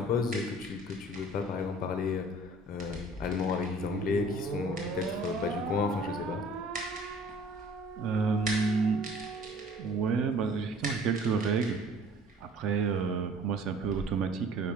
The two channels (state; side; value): normal; both; correlation 0.50